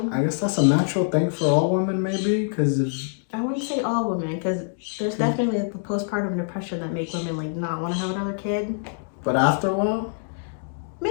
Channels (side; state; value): right; silent; digital silence